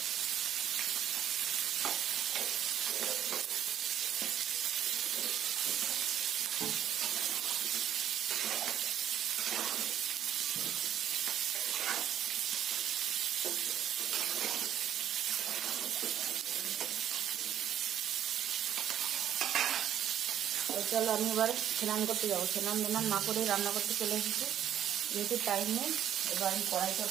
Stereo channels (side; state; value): left; quieter; 10.5 dB